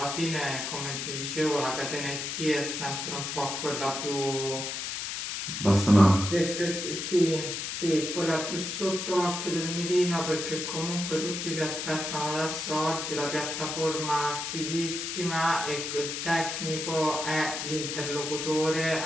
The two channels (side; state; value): left; noise; hiss, 4 dB below the sound